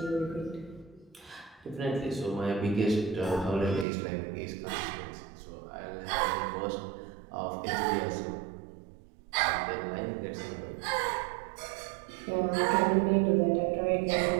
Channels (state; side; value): drops out; left; at 3.9 s